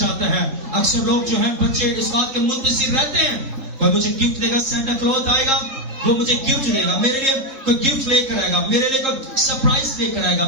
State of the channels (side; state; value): left; late; 3.8 ms